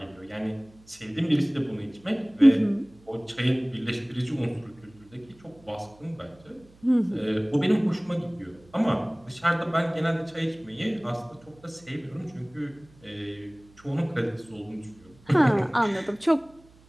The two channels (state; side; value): noise; right; hum, 27 dB below the sound